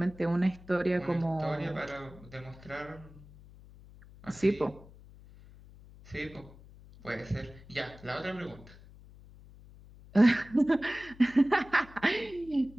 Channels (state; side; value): noise; left; hum, 21 dB below the sound